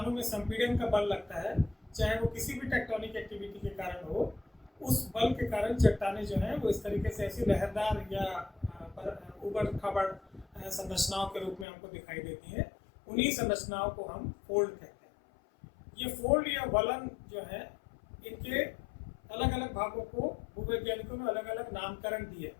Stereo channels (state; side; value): drops out; right; at 11.7 s